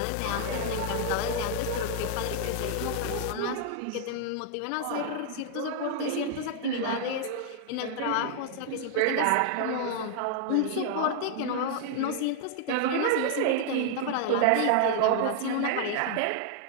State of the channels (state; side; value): different; both; correlation 0.00